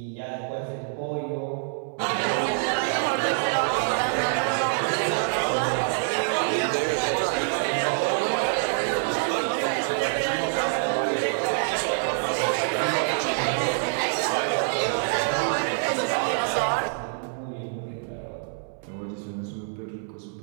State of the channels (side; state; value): left; silent; 61 dB below the other